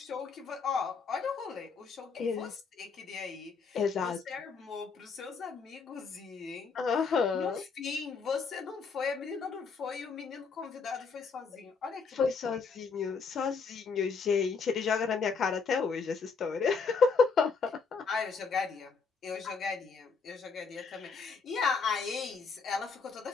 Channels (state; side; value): quieter; right; 5.1 dB